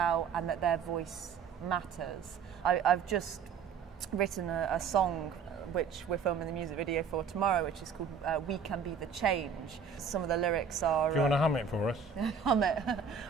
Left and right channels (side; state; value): left; quieter; 6.0 dB